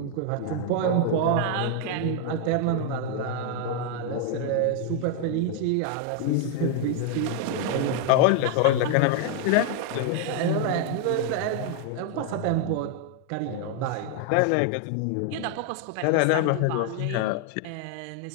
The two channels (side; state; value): both; different; correlation 0.00